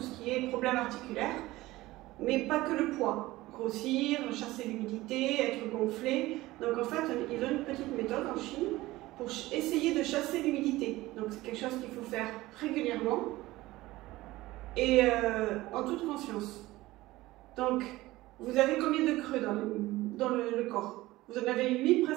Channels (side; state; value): left; quieter; 18.3 dB